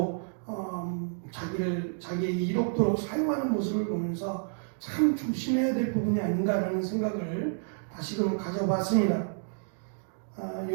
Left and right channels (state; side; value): silent; left; digital silence